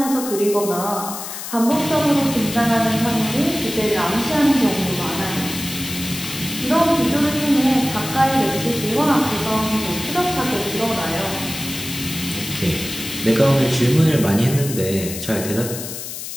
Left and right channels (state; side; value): noise; left; hiss, 8 dB below the sound